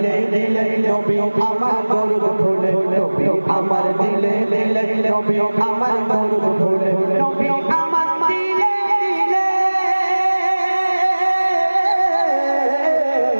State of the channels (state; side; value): inverted; both; correlation -1.00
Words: দিলে, নবী আমার দরুদ ফুলে, নবী আমার দিলে দিলে, নবী আমার দরুদ ফুলে, নবী আমার দিলে দিলে,